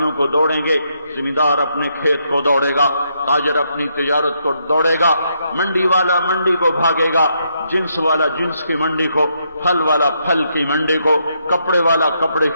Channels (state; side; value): inverted; both; correlation -0.77